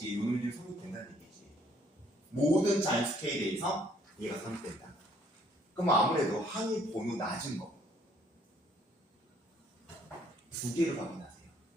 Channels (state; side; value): normal; both; correlation 0.64